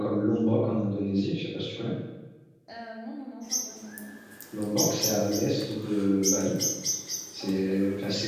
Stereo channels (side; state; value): both; identical; correlation 1.00